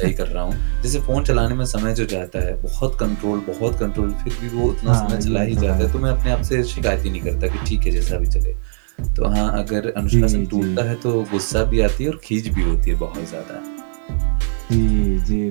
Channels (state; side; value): silent; left; digital silence